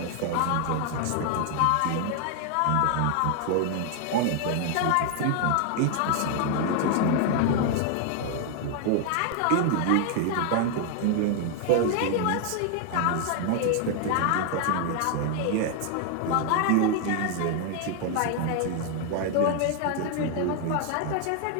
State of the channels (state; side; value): different; both; correlation 0.00